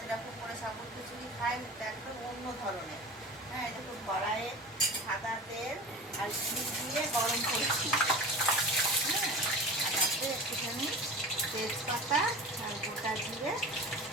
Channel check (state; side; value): normal; both; correlation 0.34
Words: করে সাবুর খিচুড়ি খাই, এটা একদম অন্য ধরনের। হ্যাঁ, দেখুন, কড়াইয়ে সাদা তেল আর ঘি দিয়ে গরম করছি। হ্যাঁ, আর তাতে একটুখানি তেজপাতা আর গোটা জিরে